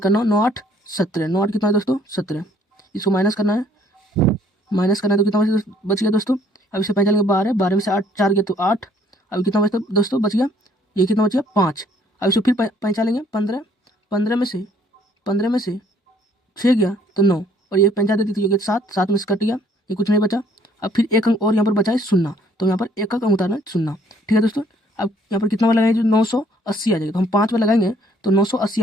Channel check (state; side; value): normal; both; correlation 0.62